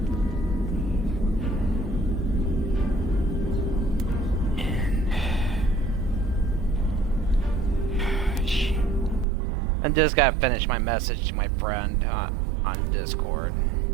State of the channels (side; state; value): left; drops out; at 9.2 s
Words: I just gotta finish my message to my friend on Discord.